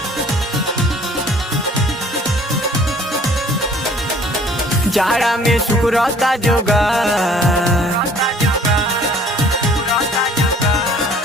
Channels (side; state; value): both; normal; correlation 0.55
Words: जाड़ा में सुकुरता जोगा,